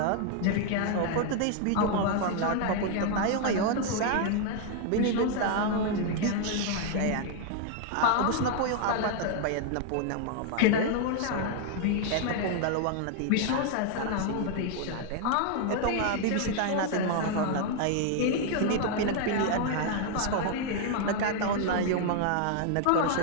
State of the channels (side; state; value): both; different; correlation 0.00